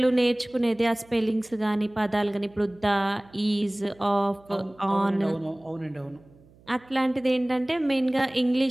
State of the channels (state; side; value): noise; right; hum, 27 dB below the sound